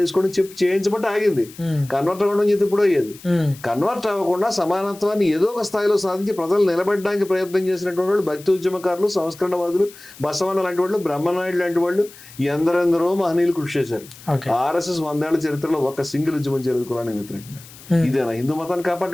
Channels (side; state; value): left; noise; hiss, 20 dB below the sound